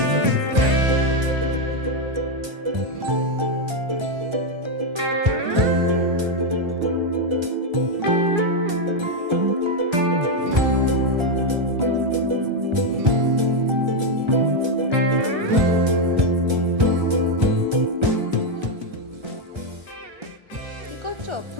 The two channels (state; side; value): late; left; 1.3 ms